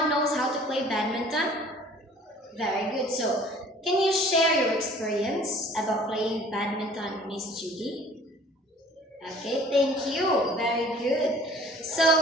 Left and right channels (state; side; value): normal; both; correlation 0.51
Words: knows how to play badminton? Very good. So can you share your experience about playing badminton, Miss Judy? Okay, thank you. Very good. So,